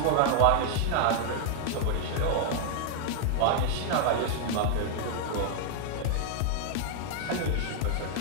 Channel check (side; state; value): both; different; correlation 0.00